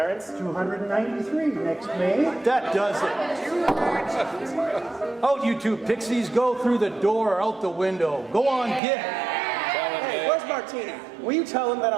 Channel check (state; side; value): drops out; left; at 8.8 s